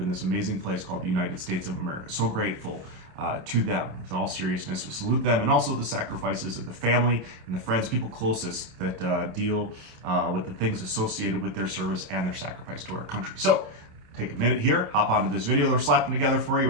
this amazing place called the United States of America. So grateful to them. With all seriousness, we salute them, and also the sacrifices of the family and the friends, people closest that deal with the things associated with their service and their sacrifice to our country. So take a minute here, hop onto this video that we're slapping together for you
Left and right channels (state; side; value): late; left; 27 ms